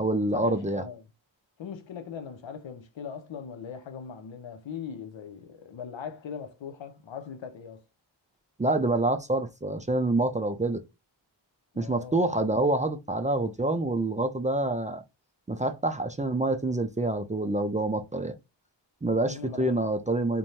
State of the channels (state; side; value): normal; both; correlation 0.40